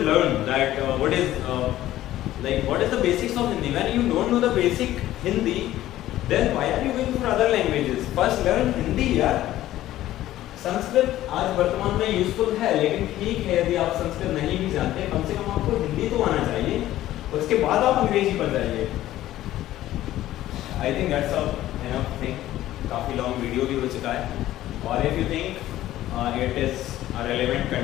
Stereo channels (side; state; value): right; quieter; 14.3 dB